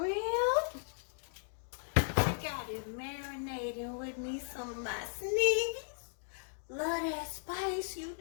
I got it marinating with me some of my Sneevy Love That Spice. You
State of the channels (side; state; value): right; silent; digital silence